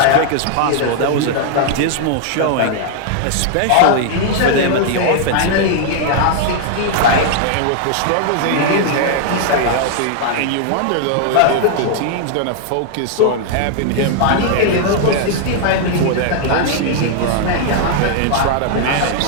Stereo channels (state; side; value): different; both; correlation 0.00